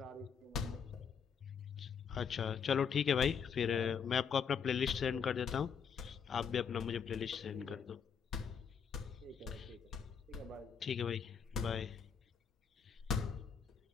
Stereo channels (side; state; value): right; quieter; 6.8 dB